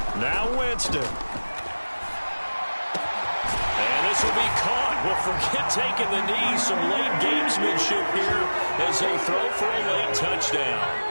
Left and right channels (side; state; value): both; inverted; correlation -1.00